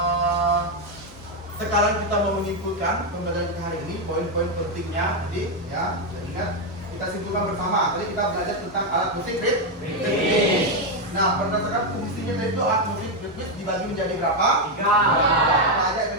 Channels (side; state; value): both; normal; correlation 0.04